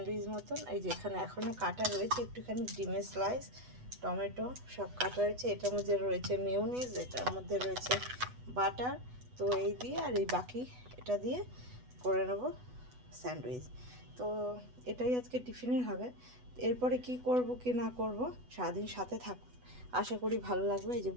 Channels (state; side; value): late; left; 8.1 ms